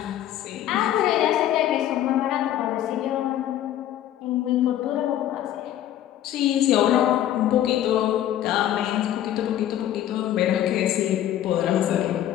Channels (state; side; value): quieter; right; 12.0 dB